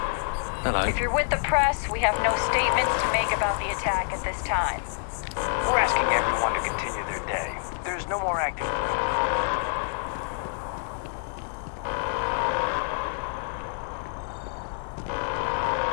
Hello. If you're with the press, we have no statements to make about the attack at this time. We're asking everyone to continue their day. There's no more activity.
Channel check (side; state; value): right; silent; digital silence